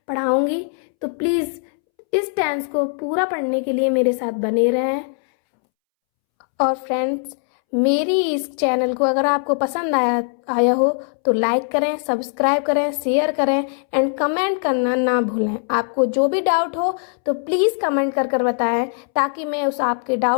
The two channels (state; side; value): silent; right; 65 dB below the other